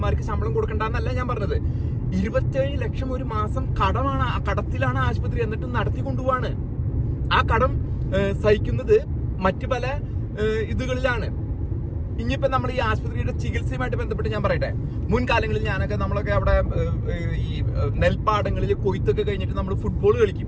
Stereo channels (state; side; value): identical; both; correlation 1.00